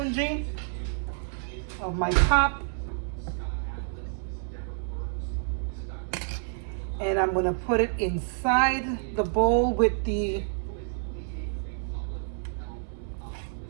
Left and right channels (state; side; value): silent; left; 59 dB below the other